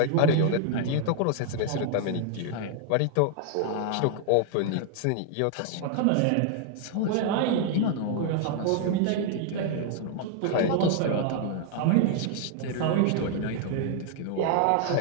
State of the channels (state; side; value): different; both; correlation 0.00